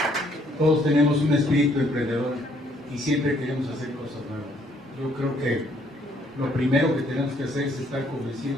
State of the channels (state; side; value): normal; both; correlation 0.66